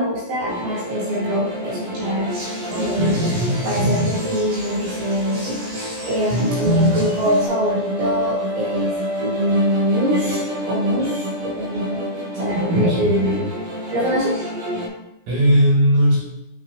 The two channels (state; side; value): late; left; 17 ms